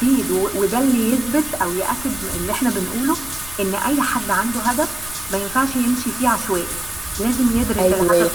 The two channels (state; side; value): noise; left; rumble, 15 dB below the sound